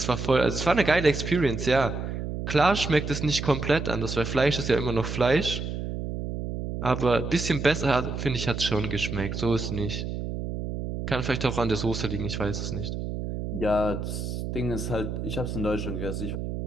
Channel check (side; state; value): right; noise; hum, 5 dB below the sound